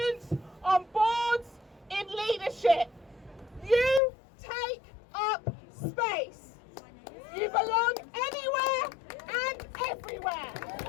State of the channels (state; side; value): drops out; right; at 4.0 s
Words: on boards, in leadership. You take up space. You belong anywhere and everywhere.